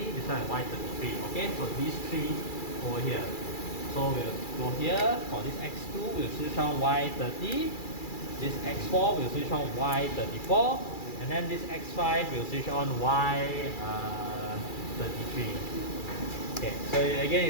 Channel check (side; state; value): right; late; 2.3 ms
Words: this one is Y33. Okay, so these three over here. So we'll go here for this X2, we'll switch on Y30, this X4 we'll switch on Y34, and then this X5 we'll switch on Y33. Okay, so again